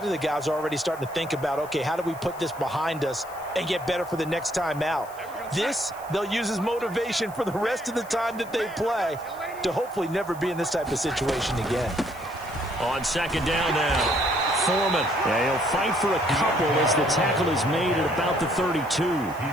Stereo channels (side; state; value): left; noise; hiss, 21 dB below the sound